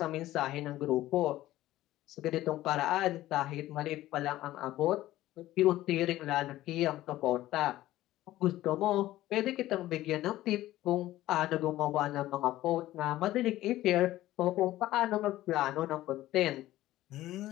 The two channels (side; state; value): right; quieter; 15.3 dB